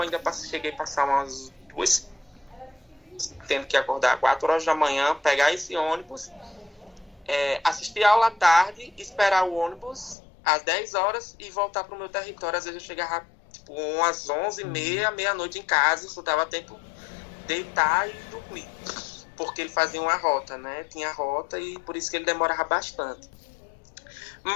ainda cheguei a passar umas 2, tendo que acordar 4 horas da manhã, pegar esse ônibus, assistir a aula à tarde, esperar o ônibus às 10 horas e voltar para o meu território. Às vezes eu chegava umas 11h30, meia-noite em casa, só dava tempo de deitar e dormir, porque ele fazia uma rota, né? Tinha rota e por isso que ele demorava bastante.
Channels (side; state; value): right; drops out; at 10.2 s